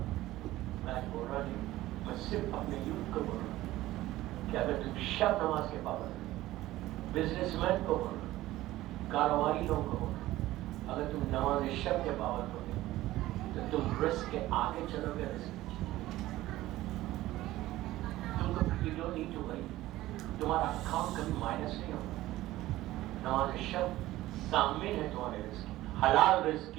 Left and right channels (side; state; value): left; quieter; 16.2 dB